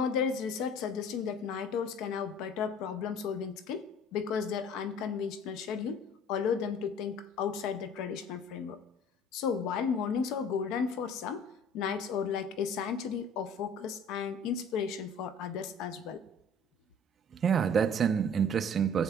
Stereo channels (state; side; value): normal; both; correlation 0.48